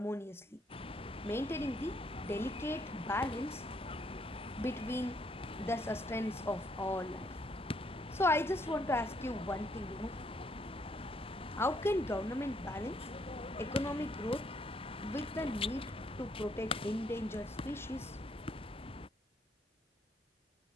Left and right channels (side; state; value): both; normal; correlation 0.71